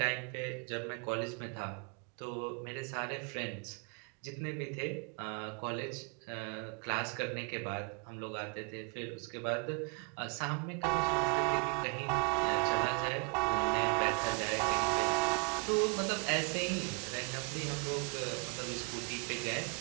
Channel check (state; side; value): quieter; left; 36.0 dB